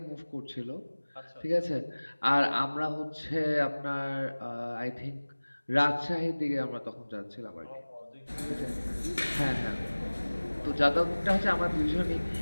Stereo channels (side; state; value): both; inverted; correlation -1.00